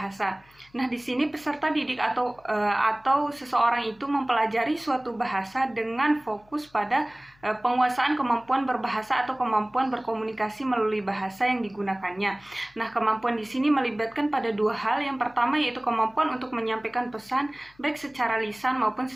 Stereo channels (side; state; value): left; noise; hum, 30 dB below the sound